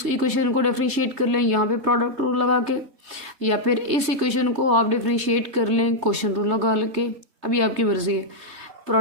इक्वेशन को डिफरेंशिएट कर लें यहाँ पे प्रोडक्ट रूल लगा के, या फिर इस इक्वेशन को आप डिफरेंशिएट कर लें क्वोशंट रूल लगा के। अभी आपकी मर्जी है।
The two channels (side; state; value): left; late; 3.3 ms